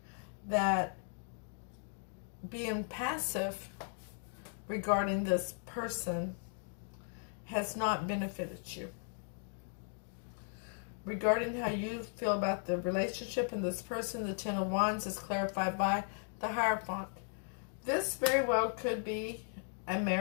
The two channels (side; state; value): right; silent; 53 dB below the other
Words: that being passive regarding this person has not benefited you. Regarding how you feel about the relationship and this person, the Ten of Wands is clarified by the Hierophant. This very well could be a